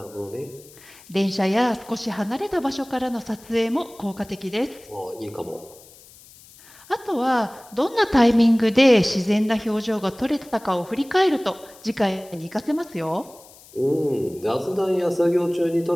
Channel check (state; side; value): noise; left; hiss, 23 dB below the sound